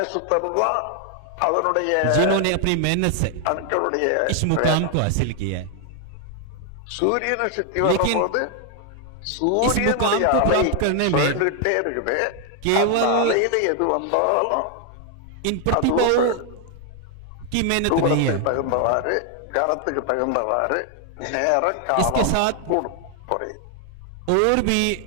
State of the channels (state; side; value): different; both; correlation 0.00